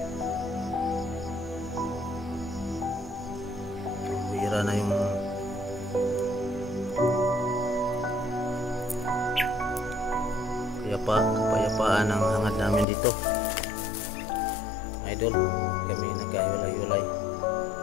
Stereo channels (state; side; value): drops out; right; at 12.9 s